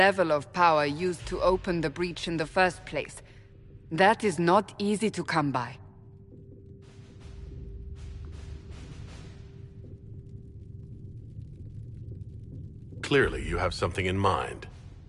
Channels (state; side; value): identical; both; correlation 1.00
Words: of power used to open the breach in the first place. That is not easy to come by. Clearly, you have something in mind.